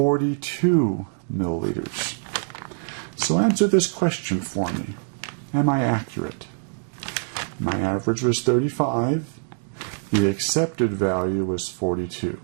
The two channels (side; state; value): left; silent; digital silence